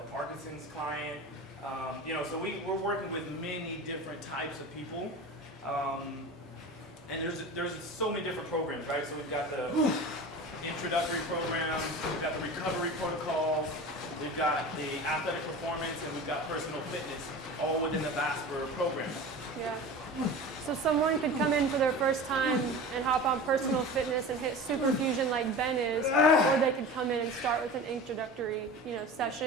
Parkinson's client. So we're working with many different types of people. And there's so many different programs, right? So we've got the introductory program, we've got the recovery protocols, we've got the athletic performance, and we've got personal fitness, all within the Vasper program. Yeah. So someone could come in for their first time and hop on personal fitness and hit super fusion like Ben is, or they could come in and start with an introductory,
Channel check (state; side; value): normal; both; correlation 0.33